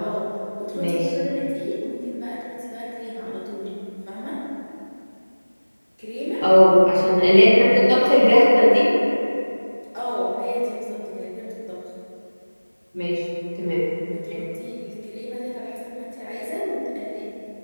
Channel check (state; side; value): inverted; both; correlation -1.00